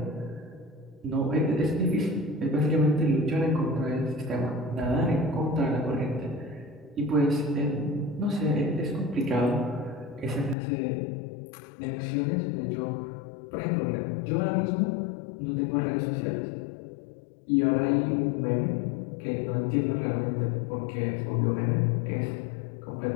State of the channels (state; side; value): drops out; right; at 10.6 s